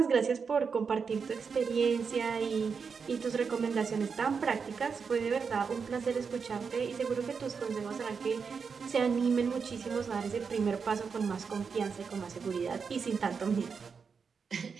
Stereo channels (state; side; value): quieter; left; 5.7 dB